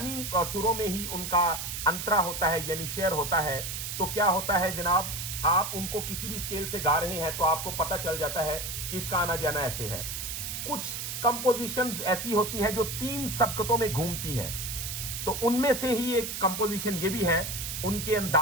सुरों में ही उनका अंतरा होता है, यानी शेयर होता है। तो क्या होता है जनाब, आप उनको किसी भी स्केल से गा रहे हैं तो आपको पता चल जाता है कि इसका आना जाना ऐसे है। कुछ कंपोजिशंस ऐसी होती हैं जो 3 सबकतों में घूमती हैं, तो उनमें से ही एक कंपोजिशन ये भी है। उनके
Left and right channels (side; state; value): right; noise; hiss, 5 dB below the sound